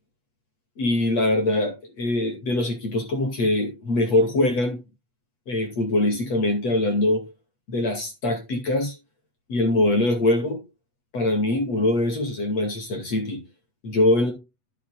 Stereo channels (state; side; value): late; right; 8.2 ms